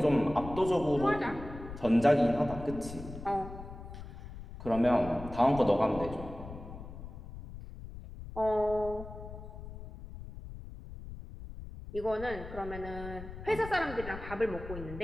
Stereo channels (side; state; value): left; noise; rumble, 12 dB below the sound